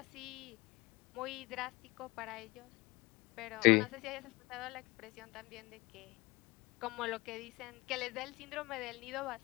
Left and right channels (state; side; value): quieter; right; 23.3 dB